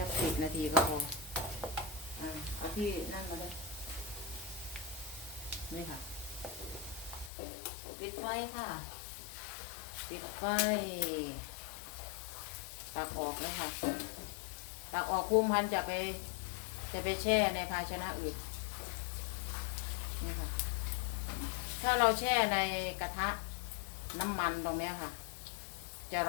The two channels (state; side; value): drops out; right; at 7.3 s